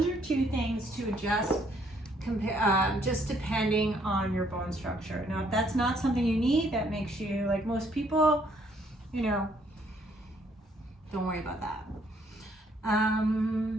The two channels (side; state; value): both; normal; correlation 0.67